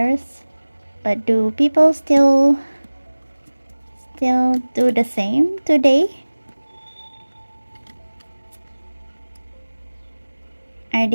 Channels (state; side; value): inverted; both; correlation -1.00